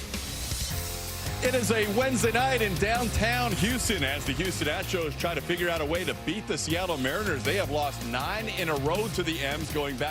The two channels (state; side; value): identical; both; correlation 1.00